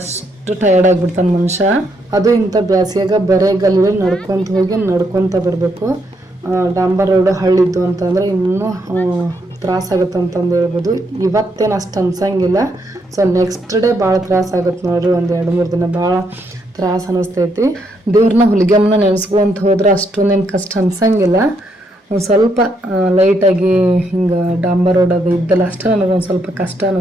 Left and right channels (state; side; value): normal; both; correlation 0.76